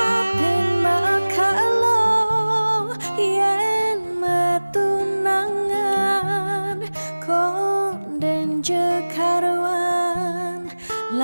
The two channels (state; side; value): inverted; both; correlation -1.00